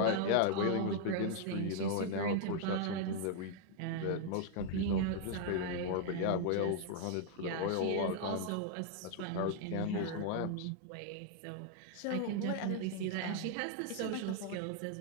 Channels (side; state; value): both; different; correlation 0.00